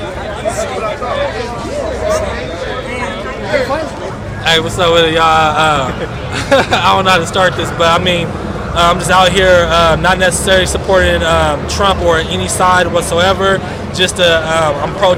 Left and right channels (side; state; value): both; identical; correlation 1.00